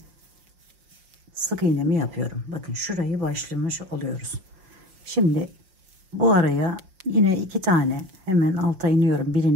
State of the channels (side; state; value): left; late; 5.9 ms